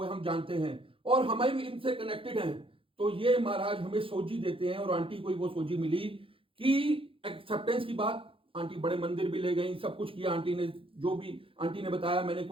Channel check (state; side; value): late; left; 0.26 ms